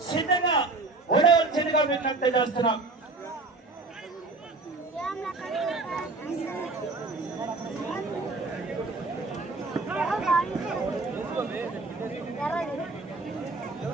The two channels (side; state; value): left; quieter; 3.5 dB